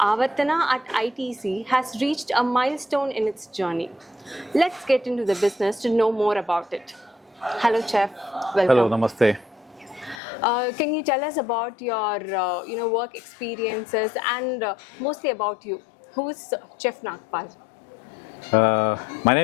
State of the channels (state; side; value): drops out; right; at 10.2 s